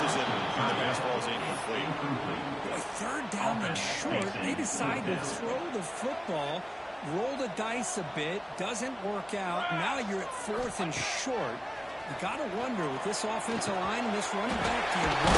it, and the pass ball is incomplete. Boy, third down and short, they decide to throw the football, roll the dice a bit, doesn't work out. Now you're at fourth and short. You got to wonder, with this offensive line and this running back, do you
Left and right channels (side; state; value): both; identical; correlation 1.00